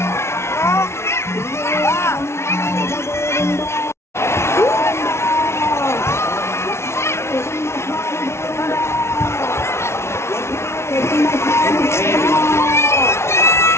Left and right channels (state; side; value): late; right; 0.13 ms